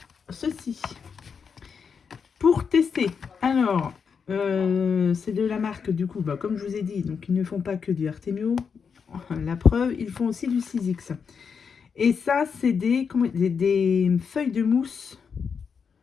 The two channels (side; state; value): right; quieter; 6.2 dB